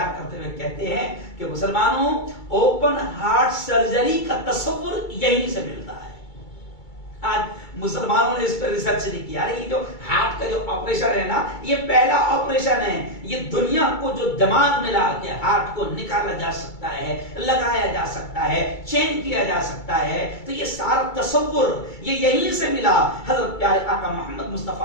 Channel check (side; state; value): right; late; 2.3 ms